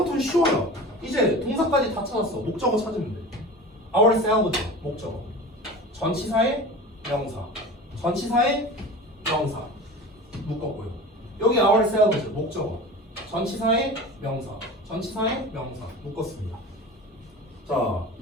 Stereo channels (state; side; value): normal; both; correlation 0.34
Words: 쉬워요. 이제 동사까지 다 찾았어. 목적어 찾으면 돼. ourselves 목적어. 전치사의 명사. 전치사의 명사. 묶었고요. 여기 ourselves 목적어. 전치사의 명사. 전치사의 명사. 묶었습니다. 자,